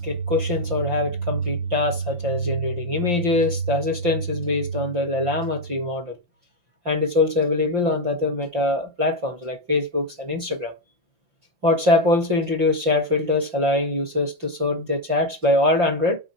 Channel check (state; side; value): late; left; 5.8 ms